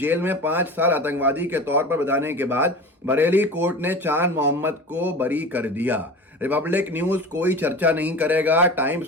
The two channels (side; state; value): both; normal; correlation 0.33